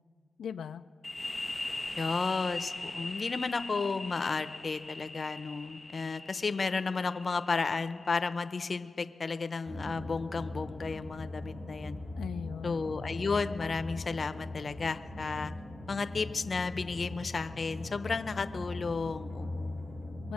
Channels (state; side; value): quieter; right; 3.7 dB